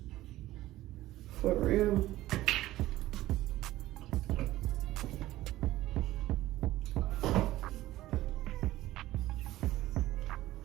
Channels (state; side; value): quieter; left; 15.8 dB